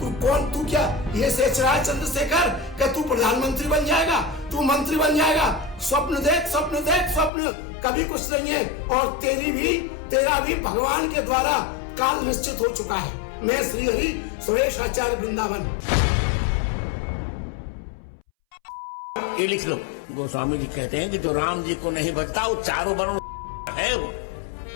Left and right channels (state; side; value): drops out; right; at 7.3 s